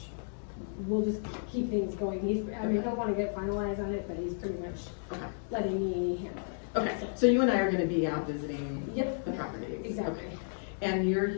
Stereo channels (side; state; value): right; silent; digital silence